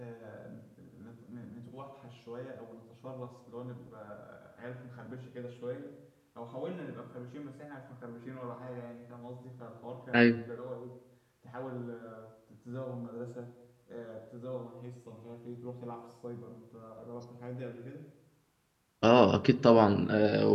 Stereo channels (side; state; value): both; identical; correlation 1.00